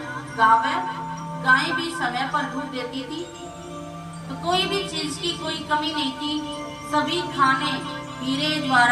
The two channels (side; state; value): both; identical; correlation 1.00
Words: गावे, गाय भी समय पर दूध देती थी। तो कोई भी चीज की कोई कमी नहीं थी। सभी खाने हीरे